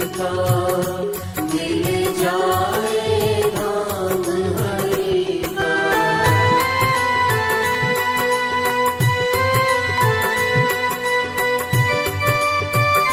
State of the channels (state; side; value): identical; both; correlation 1.00